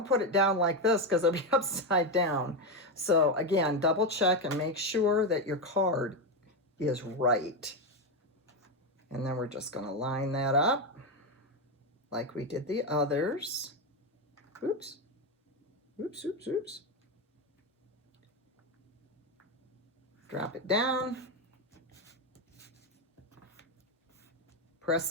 put it down like this because it'll be upside down. So again, double check and make sure that your card is right. And then we're just going to line that up like we did the others. Oops. Oops, oops, oops. Drop it down. Press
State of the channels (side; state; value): both; normal; correlation 0.10